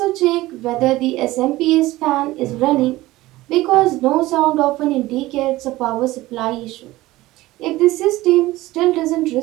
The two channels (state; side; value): quieter; left; 17.8 dB